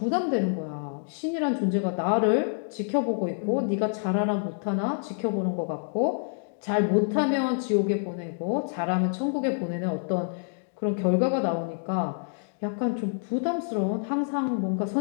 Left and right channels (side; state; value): right; silent; digital silence